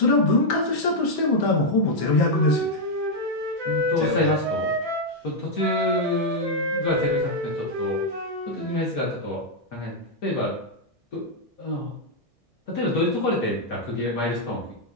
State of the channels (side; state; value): right; late; 1.6 ms